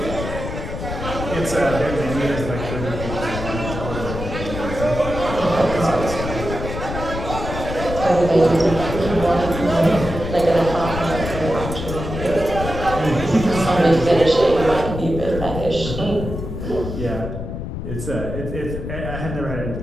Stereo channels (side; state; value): left; noise; rumble, 6 dB below the sound